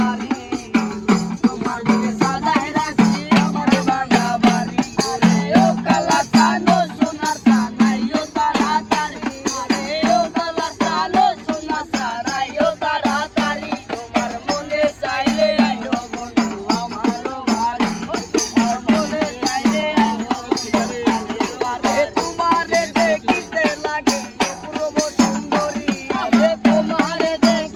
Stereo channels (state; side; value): identical; both; correlation 1.00